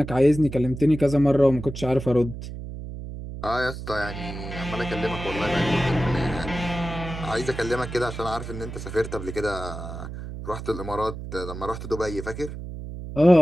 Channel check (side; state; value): right; noise; hum, 9 dB below the sound